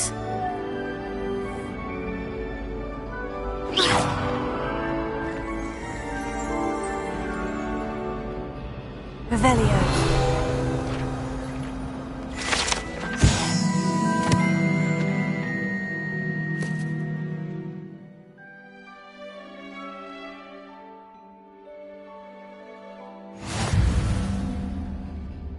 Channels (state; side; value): identical; both; correlation 1.00